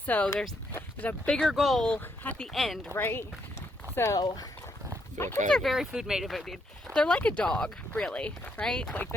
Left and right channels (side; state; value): both; normal; correlation 0.76